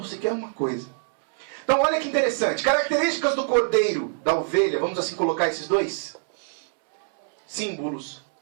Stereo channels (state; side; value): silent; left; 62 dB below the other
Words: sequer uma coisa. Então olha que interessante. Características do cordeiro, da ovelha, vamos assim colocar esses dois símbolos.